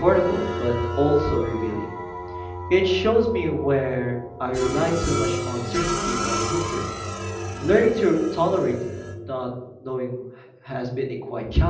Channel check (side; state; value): both; identical; correlation 1.00